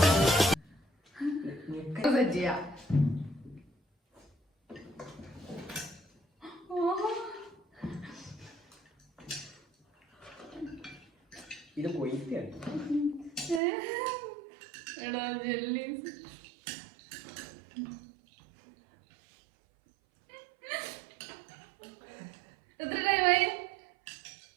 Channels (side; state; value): left; drops out; at 13.6 s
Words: ചെയ്യാം. ഇത് പോയിട്ടാണ്. എടാ ജെല്ലീസ്. എത്ര ടൈമായി?